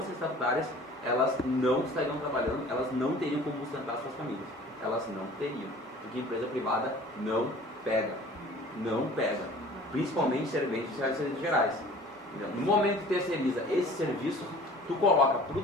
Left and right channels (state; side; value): normal; both; correlation 0.47